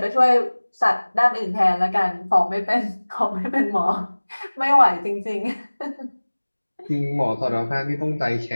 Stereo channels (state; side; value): inverted; both; correlation -1.00